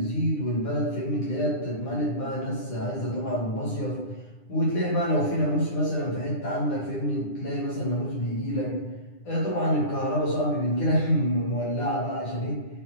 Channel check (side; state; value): right; late; 9.9 ms